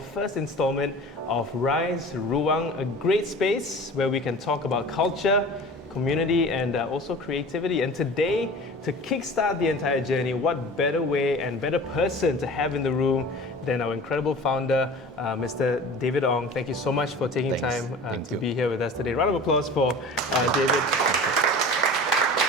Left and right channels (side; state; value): both; normal; correlation 0.39